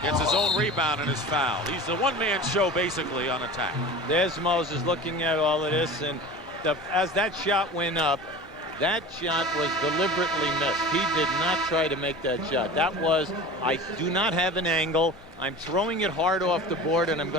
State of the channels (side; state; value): both; normal; correlation 0.35